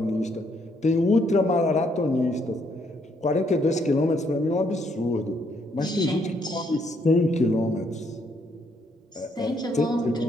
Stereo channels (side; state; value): both; normal; correlation 0.71